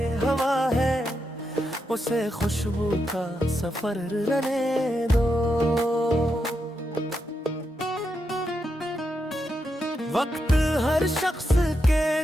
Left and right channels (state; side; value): normal; both; correlation 0.84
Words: हवा है उसे खुशबू का सफर रहने दो। वक्त हर शख्स के